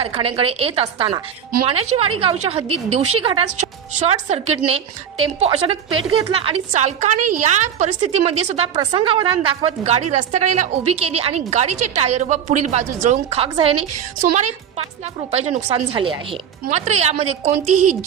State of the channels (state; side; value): quieter; left; 8.6 dB